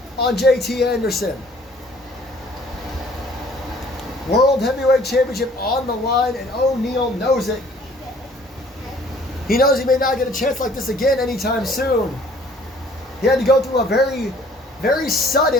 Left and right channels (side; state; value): both; normal; correlation 0.56